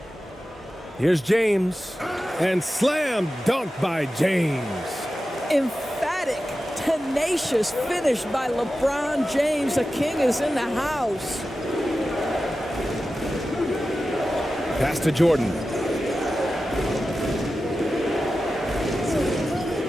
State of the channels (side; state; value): both; normal; correlation 0.93